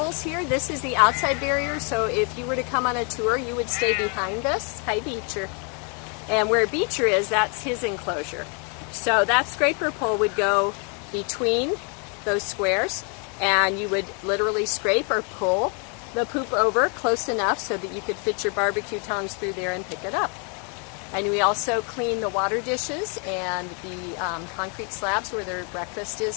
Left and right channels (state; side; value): quieter; right; 37.3 dB